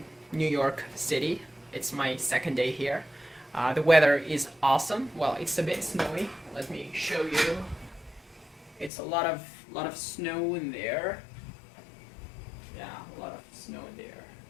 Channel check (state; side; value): drops out; right; at 8.9 s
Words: New York City. It's my second day here. The weather is awesome. Well, it's a bit snowy. Let me show you. It's a lot of snow in there. Yeah, a lot of snow in there.